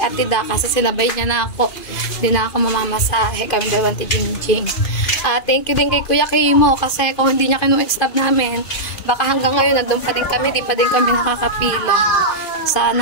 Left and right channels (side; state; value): right; late; 2.5 ms